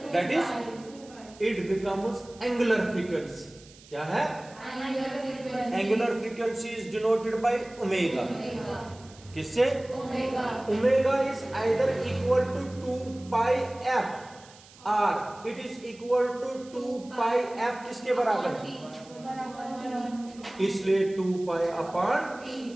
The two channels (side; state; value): right; noise; hiss, 23 dB below the sound